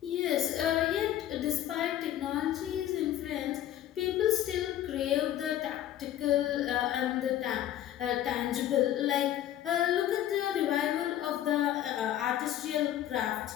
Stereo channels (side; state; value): right; quieter; 12.1 dB